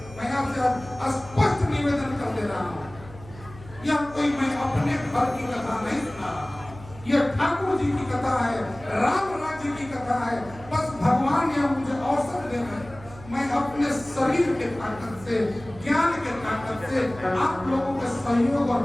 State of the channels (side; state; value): right; noise; hum, 18 dB below the sound